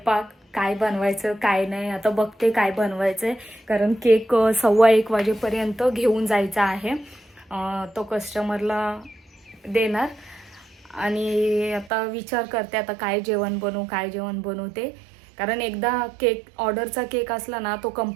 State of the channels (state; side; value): drops out; left; at 11.9 s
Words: काय बनवायचं काय नाही आता बघते काय बनवायचं आहे. कारण केक 1:15 वाजेपर्यंत घेऊन जायचा आहे. तो कस्टमरला देणार. आणि आता विचार करते आता काय जेवण बनवू ते. कारण एकदा केक ऑर्डरचा केक असला ना तो